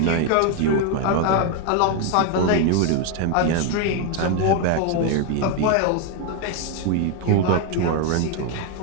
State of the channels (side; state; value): both; different; correlation 0.01